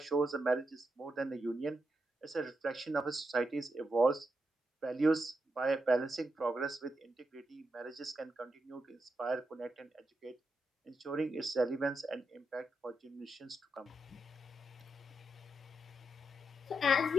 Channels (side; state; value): both; normal; correlation 0.84